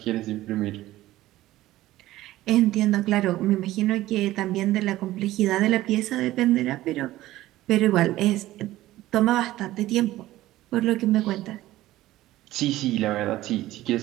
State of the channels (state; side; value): quieter; left; 15.9 dB